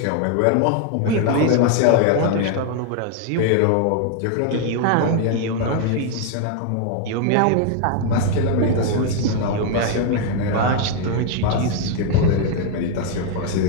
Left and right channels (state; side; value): different; both; correlation 0.01